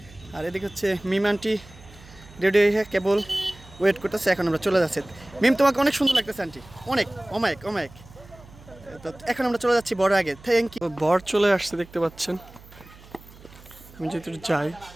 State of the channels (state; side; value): noise; right; hum, 22 dB below the sound